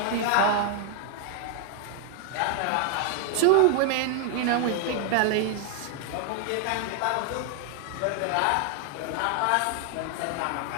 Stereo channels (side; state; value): both; different; correlation 0.00